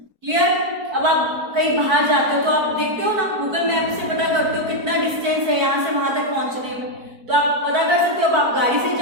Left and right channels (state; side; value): late; left; 4.6 ms